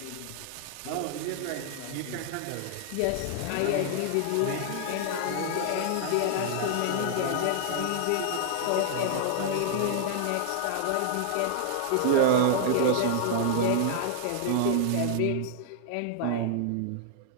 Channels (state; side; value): different; both; correlation 0.00